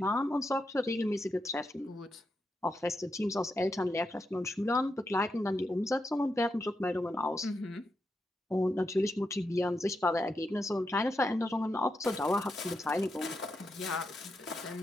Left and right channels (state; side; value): normal; both; correlation 0.85